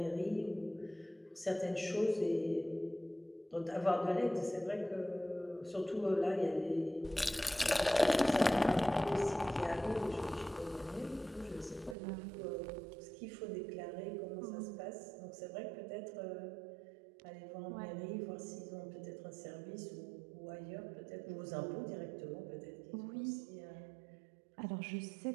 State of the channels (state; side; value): drops out; left; at 12.0 s